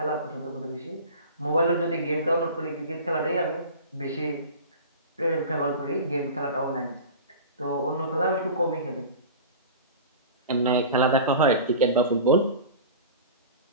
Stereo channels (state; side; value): inverted; both; correlation -0.35